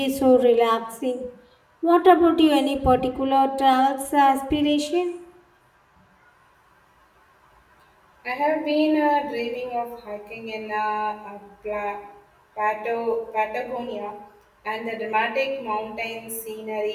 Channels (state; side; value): identical; both; correlation 1.00